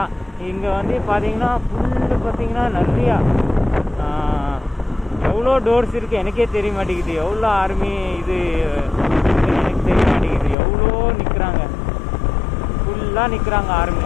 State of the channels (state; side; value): drops out; right; at 10.6 s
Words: இங்கே வந்து பார்த்தீங்கன்னா பார்த்தீங்கன்னா நிறையா எவ்வளோ டோர்ஸ் இருக்குது எனக்கே தெரிய மாட்டேங்குது. எவ்வளோ ஆர்மி இது எனக்கு தெரிய மாட்டேங்குது. எவ்வளோ நிற்கிறாங்க, ஃபுல்லாக நிற்கிறாங்க ஆர்மி.